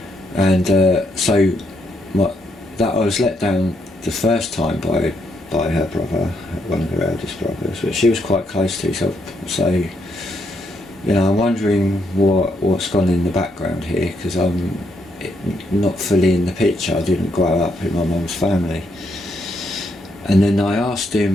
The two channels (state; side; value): normal; both; correlation 0.76